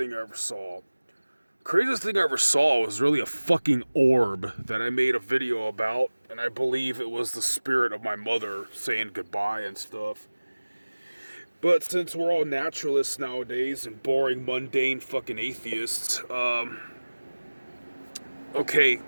I ever saw. Craziest thing I ever saw was really a fucking orb that I made a video about, and I believe it was the spirit of my mother saying goodbye and stuff. But since we're all naturalists nowadays and boring, mundane fucking atheists, okay,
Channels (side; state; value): both; inverted; correlation -1.00